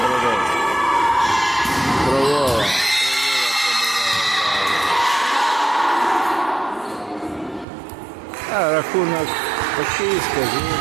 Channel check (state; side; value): drops out; left; at 7.7 s